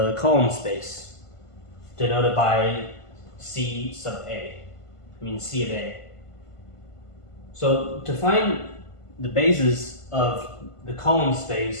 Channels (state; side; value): late; right; 1.5 ms